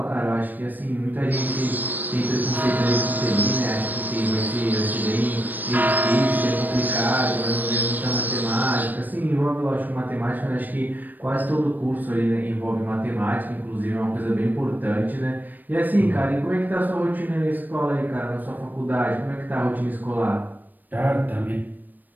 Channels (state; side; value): late; left; 0.087 ms